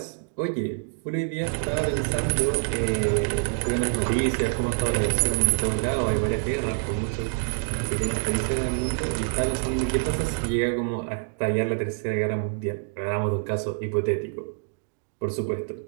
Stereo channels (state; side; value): silent; left; digital silence